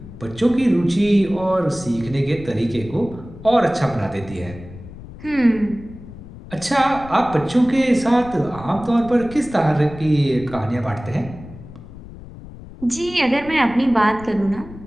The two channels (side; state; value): left; noise; rumble, 16 dB below the sound